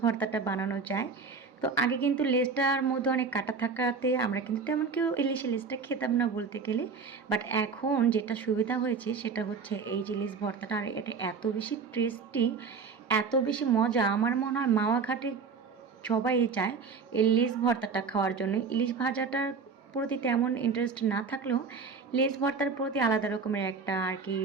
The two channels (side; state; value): left; quieter; 5.2 dB